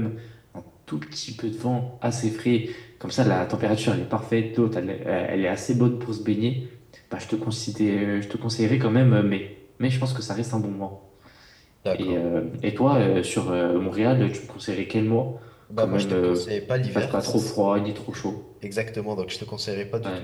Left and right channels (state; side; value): identical; both; correlation 1.00